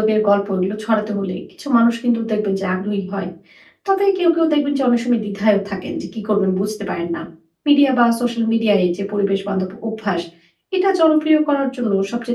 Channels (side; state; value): both; identical; correlation 1.00